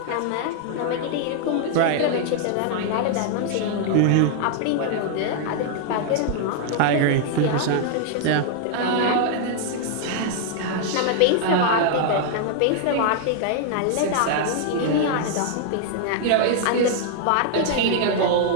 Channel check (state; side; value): different; both; correlation 0.00